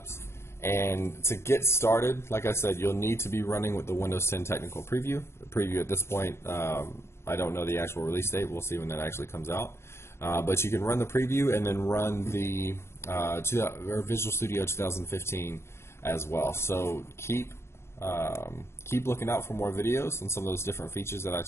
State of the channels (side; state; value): right; late; 0.12 ms